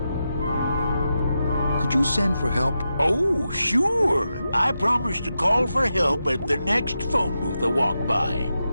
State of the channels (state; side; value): inverted; both; correlation -0.88